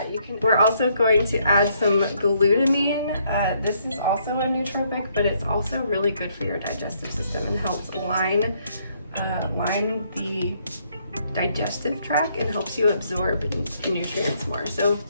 We're also going to add some glutamine. This is also a nootropic, but it's also really good for your digestive system and helps line the digestive tract and helps you absorb nutrients more. So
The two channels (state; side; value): inverted; both; correlation -0.70